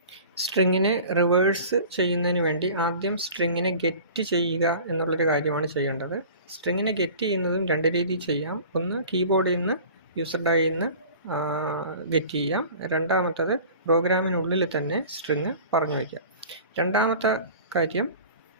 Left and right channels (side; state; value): both; inverted; correlation -0.42